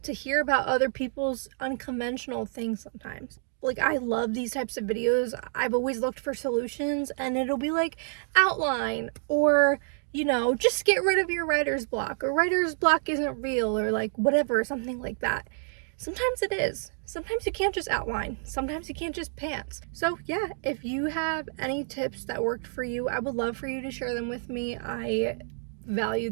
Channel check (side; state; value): left; silent; 59 dB below the other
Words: to hear about other people's unconventional things sometimes. Like, I love these types of videos. I've always looked for solutions, and it'll be like, outline, or just get rid of your writer's block, or writer's block isn't real, or like whatever, something like that. Sometimes it is. Sometimes you can't just outline. Sometimes you can't just pants. So yeah, if you have any tips that worked for you, I would love for you to share them with me. I value